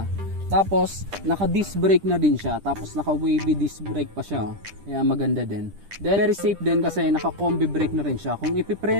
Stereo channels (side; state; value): left; late; 10 ms